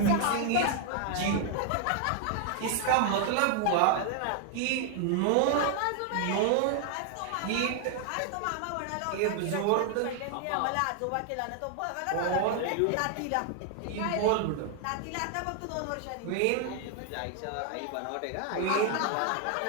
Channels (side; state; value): both; different; correlation 0.00